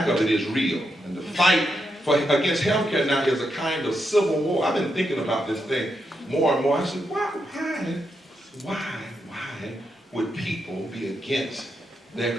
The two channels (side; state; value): both; normal; correlation 0.83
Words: of it is real. And the fight against healthcare now is a kind of civil war. I've been thinking about this thing more and more. I said, why would people be against their